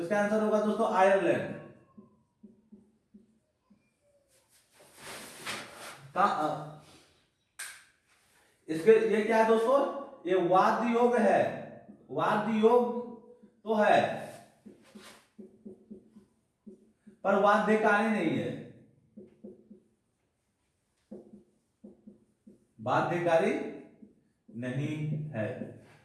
इसका आंसर होगा दोस्तों आयरलैंड। इसके ये क्या है दोस्तों? ये वाद्य योग है। वाद्य योग तो है पर बाध्यकारी नहीं है। बाध्यकारी नहीं है।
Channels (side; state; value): both; identical; correlation 1.00